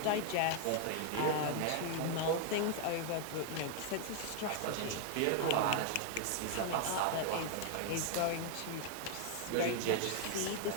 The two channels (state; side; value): different; both; correlation 0.00